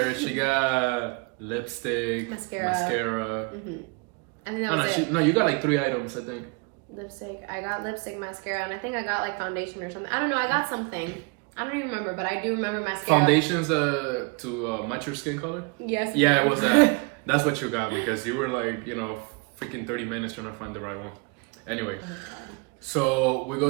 She got lipstick, mascara. Mm-hmm. And then that was it. You got like 3 items, I think. Lipstick. I got lipstick, mascara, and I think I got like foundation or something. I don't know. I got something. I don't even remember, but I do remember mascara. Foundations to match your skin color? Yes. Yeah, it was that. That's what you got, because you were like, freaking 30 minutes trying to find the right one. Anyway, so we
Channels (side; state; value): left; quieter; 31.4 dB